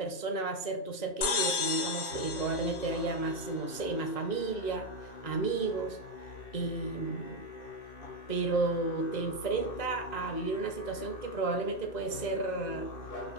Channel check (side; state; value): right; late; 2.6 ms